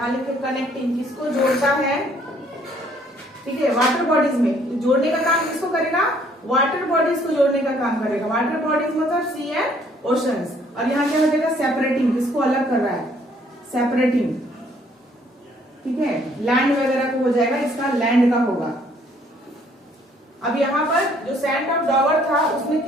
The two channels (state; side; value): normal; both; correlation 0.63